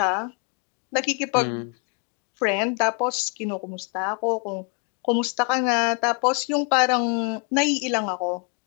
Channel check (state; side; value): quieter; right; 37.2 dB